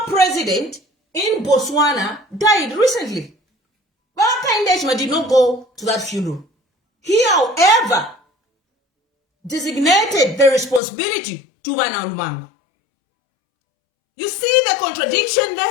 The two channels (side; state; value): right; drops out; at 10.8 s